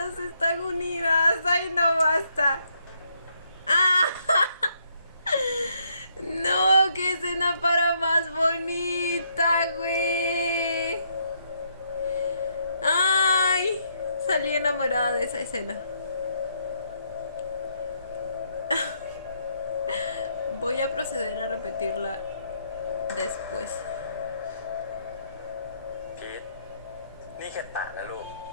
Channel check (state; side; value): inverted; both; correlation -0.73